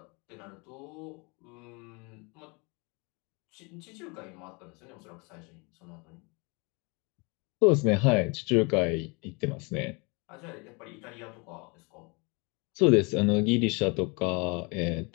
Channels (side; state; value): right; quieter; 29.9 dB